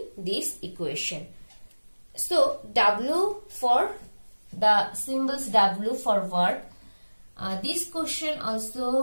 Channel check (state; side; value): inverted; both; correlation -1.00